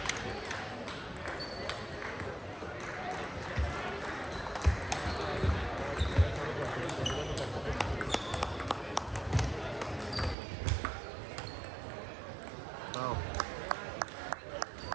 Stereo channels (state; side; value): drops out; left; at 10.4 s